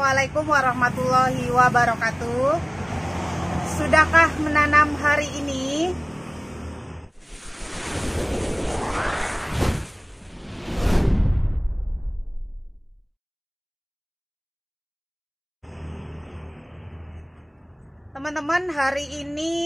warahmatullahi wabarakatuh. Sudahkah menanam hari ini? Teman-teman, hari ini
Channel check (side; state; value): both; identical; correlation 1.00